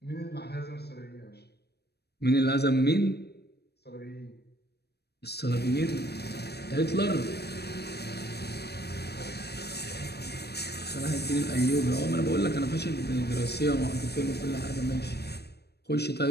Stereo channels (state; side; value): late; right; 0.47 ms